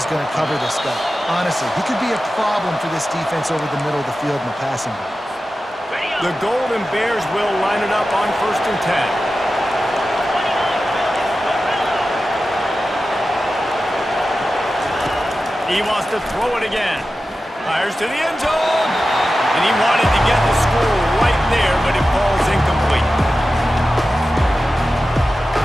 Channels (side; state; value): both; normal; correlation 0.93